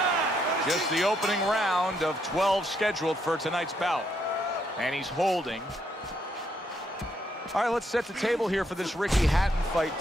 Just the opening round of 12 scheduled for tonight's bout. And he's holding. All right, let's set the table here for this Ricky Hatton fight,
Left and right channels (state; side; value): normal; both; correlation 0.75